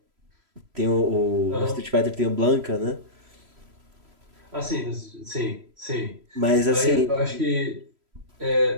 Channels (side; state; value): left; late; 3.0 ms